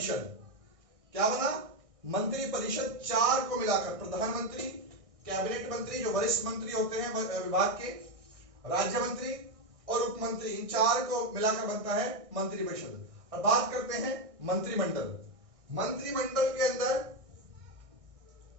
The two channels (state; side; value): late; left; 1.6 ms